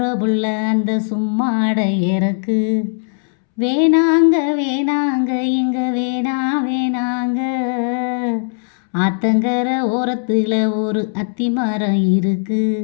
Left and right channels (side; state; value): right; silent; 67 dB below the other